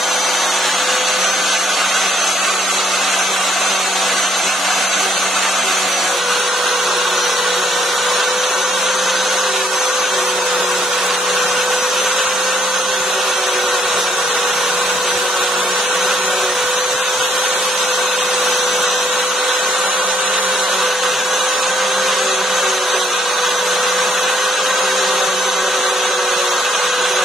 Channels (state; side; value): normal; both; correlation 0.69